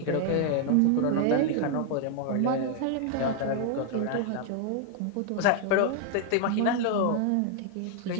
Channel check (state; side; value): different; both; correlation 0.00